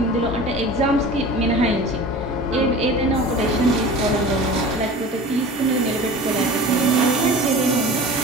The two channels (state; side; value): normal; both; correlation 0.38